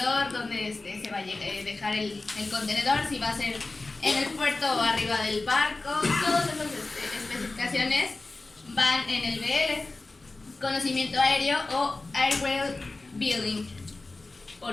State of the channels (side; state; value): right; quieter; 3.3 dB